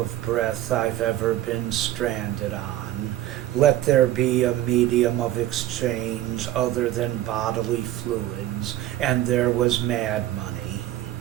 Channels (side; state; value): left; quieter; 13.6 dB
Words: breath I've ever been stranded on, let there be a medium of exchange other than bodily fluids, and there was mad money.